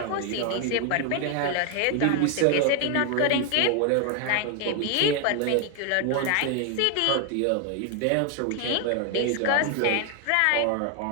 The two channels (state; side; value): different; both; correlation 0.01